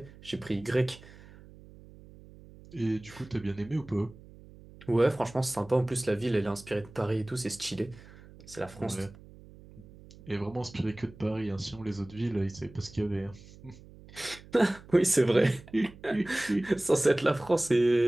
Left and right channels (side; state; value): right; noise; hum, 20 dB below the sound